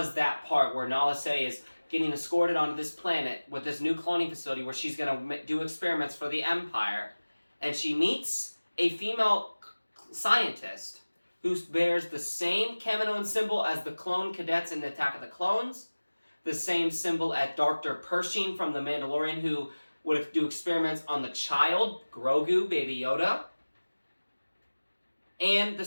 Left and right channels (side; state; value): both; inverted; correlation -1.00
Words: that part where Nala Se is getting escorted onto this planet with this new cloning facility where she's going to do experiments for the Empire. And she meets a female scientist who bears the same Kaminoan symbol as the clone cadets in the Attack of the Clones, the same symbol as Dr. Pershing from The Mandalorian, who would do experiments on the child, Grogu, Baby Yoda, and the